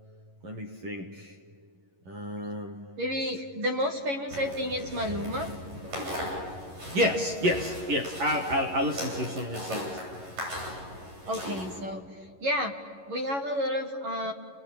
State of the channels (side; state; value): left; late; 11 ms